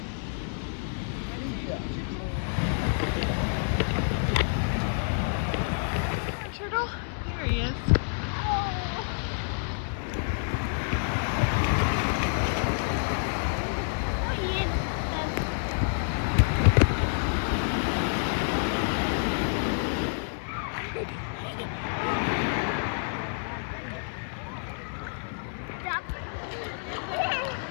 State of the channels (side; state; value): right; silent; 59 dB below the other